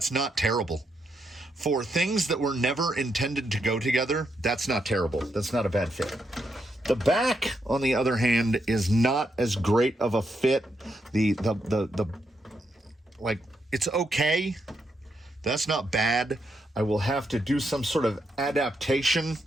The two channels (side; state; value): both; normal; correlation 0.81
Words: not terrible. For things that were never intended to go together, that's not terrible. That's not a bad fit. The back, on the other hand, is not as great of a fit. Like, it's okay. That's not bad. I will have to do some sort of adaptation